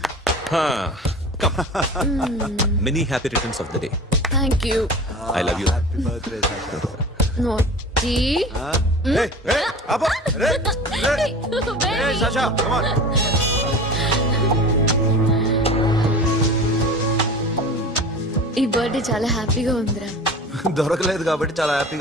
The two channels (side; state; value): both; normal; correlation 0.37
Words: Come. Many happy returns of the day. Thank you. I love you. Happy birthday, Sasha. Naughty. Hey, Abba. Hey, Sasha, come on. ఈ birthday చాలా హ్యాపీగా ఉందిరా. దొరకలేదు కాబట్టి చాలా